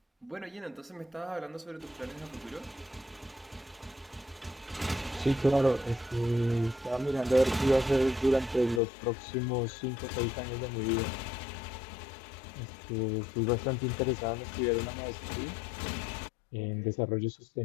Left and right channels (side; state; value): right; drops out; at 8.8 s